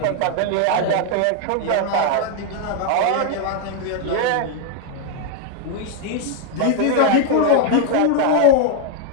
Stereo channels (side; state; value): both; different; correlation 0.00